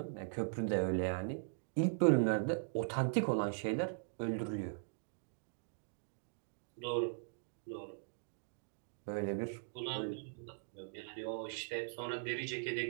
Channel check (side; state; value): left; silent; digital silence